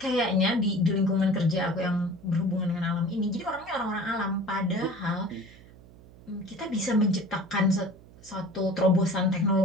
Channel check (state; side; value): noise; right; hum, 22 dB below the sound